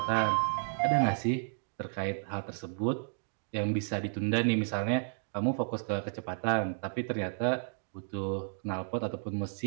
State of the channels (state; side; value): silent; left; digital silence